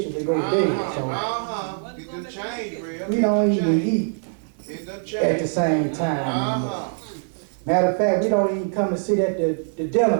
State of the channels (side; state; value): left; silent; digital silence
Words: and go to bed. So Uh-huh. It done changed, real. we don't even eat It done at the changed. same time anymore. Uh-huh. Matter of fact, we don't even come to sit at the